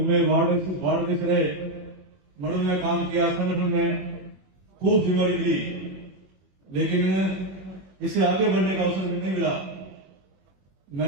वार्ड देश रहे, मड़ों में काम किया, संगठन में खूब जिम्मेदारी मिली, लेकिन इससे आगे बढ़ने का अवसर नहीं मिला।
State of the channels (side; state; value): left; late; 21 ms